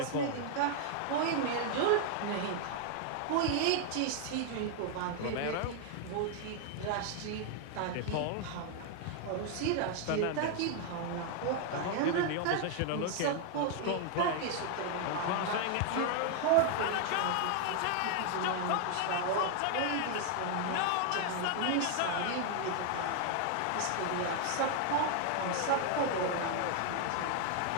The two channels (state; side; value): different; both; correlation 0.00